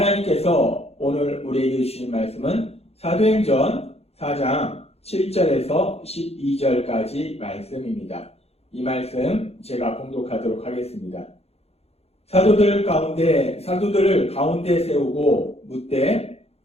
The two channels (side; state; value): right; late; 0.30 ms